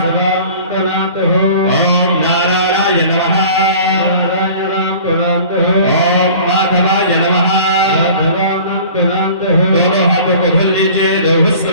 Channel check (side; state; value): both; inverted; correlation -0.45